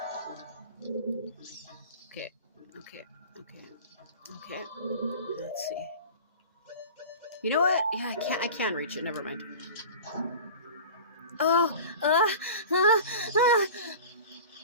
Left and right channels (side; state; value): both; inverted; correlation -0.37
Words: Okay. Let's see. You know what? Yeah, I can reach it. Never mind. Oh, no,